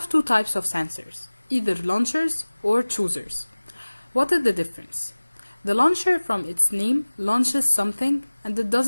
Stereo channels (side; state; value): both; inverted; correlation -1.00